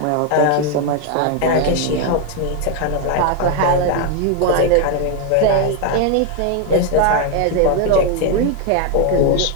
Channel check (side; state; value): both; different; correlation 0.01